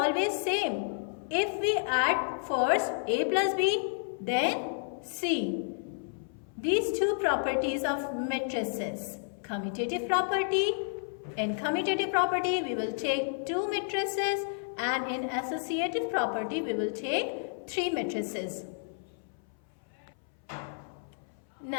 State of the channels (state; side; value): silent; right; 57 dB below the other